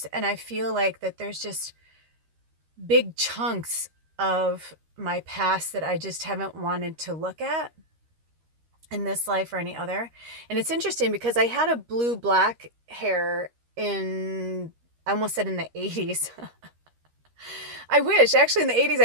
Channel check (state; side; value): late; left; 13 ms